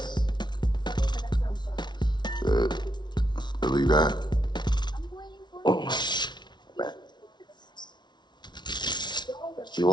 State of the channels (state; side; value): late; right; 0.21 ms